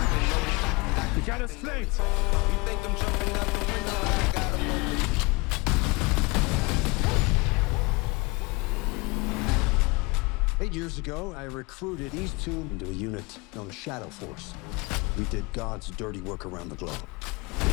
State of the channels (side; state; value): right; quieter; 26.4 dB